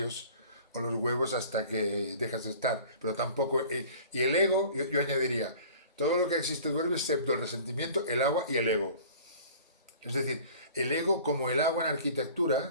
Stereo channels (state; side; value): inverted; both; correlation -0.46